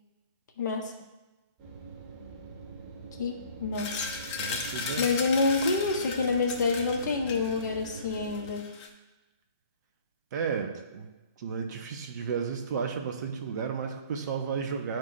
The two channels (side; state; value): both; inverted; correlation -0.51